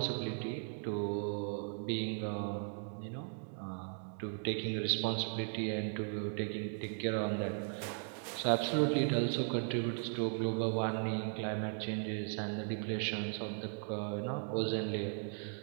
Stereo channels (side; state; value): left; silent; 53 dB below the other